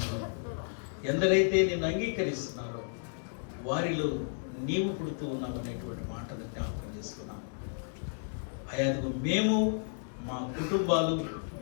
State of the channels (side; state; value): right; silent; digital silence